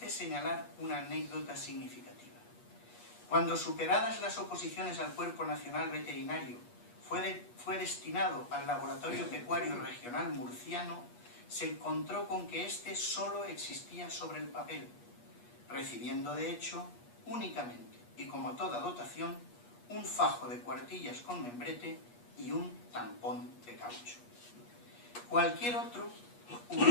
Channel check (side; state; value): right; late; 8.4 ms